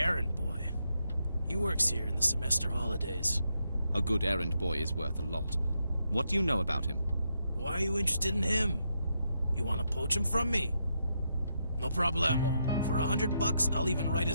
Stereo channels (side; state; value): both; inverted; correlation -0.81